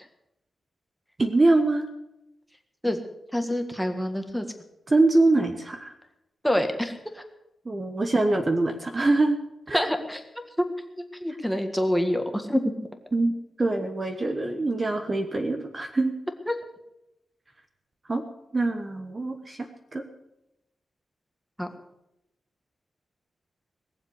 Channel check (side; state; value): both; normal; correlation 0.95